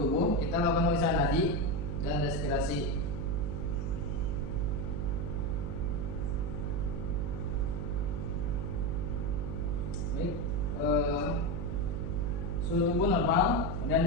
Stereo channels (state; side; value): noise; right; hum, 2 dB below the sound